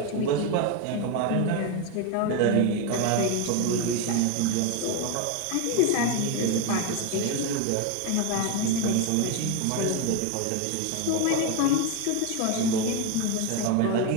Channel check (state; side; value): different; both; correlation 0.02